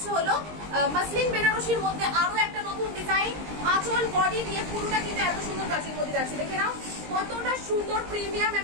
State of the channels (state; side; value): late; left; 20 ms